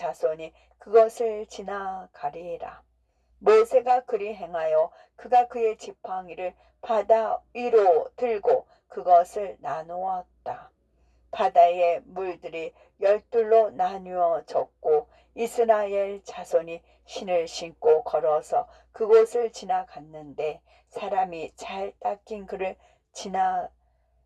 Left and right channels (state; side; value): identical; both; correlation 1.00